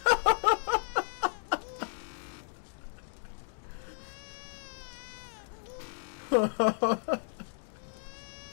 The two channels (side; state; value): right; silent; digital silence